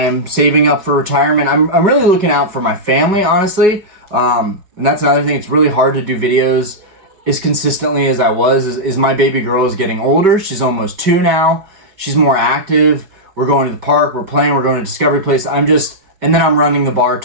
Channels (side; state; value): left; late; 5.2 ms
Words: saving up for retirement. I'm really looking out for my family, honestly. And that's another thing. It's really hard to do videos as consistently as I was. Is my baby girl is getting older. She's almost 2 now. She's more active. We're going to the park. We're playing. We're going to Discovery Place. And then I'm running the bar